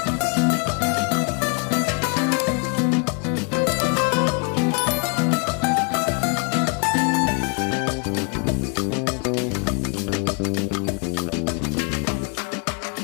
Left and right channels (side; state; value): right; quieter; 36.6 dB